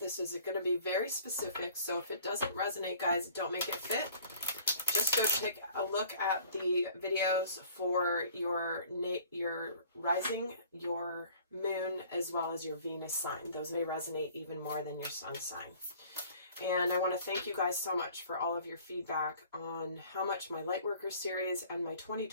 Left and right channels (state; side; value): inverted; both; correlation -0.51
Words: is going to be very specific. So if it doesn't resonate, guys, don't make it fit. Just go take a look at the videos for your rising, your moon, as well as your Venus sign. Those may resonate even more than your sun sign. And I want to thank you guys so much for all of your feedback on how much my Lightworker series and my